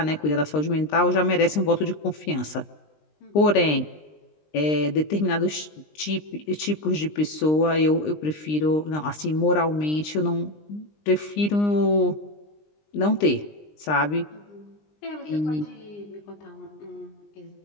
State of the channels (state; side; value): late; right; 20 ms